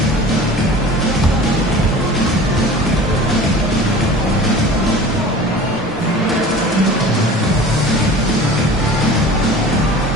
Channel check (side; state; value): both; normal; correlation 0.40